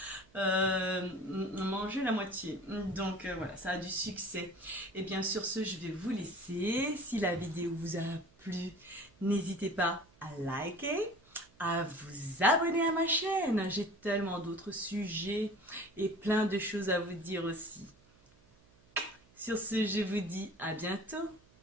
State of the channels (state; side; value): noise; right; hum, 29 dB below the sound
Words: mangé la moitié. Donc voilà, ça a du succès. Et bien sur ce, je vais vous laisser. Si la vidéo vous a plu, n'hésitez pas à liker, à vous abonner à ma chaîne. J'ai tellement d'autres sujets et plein de choses à vous dire aussi. Sur ce, je vous dis à bientôt.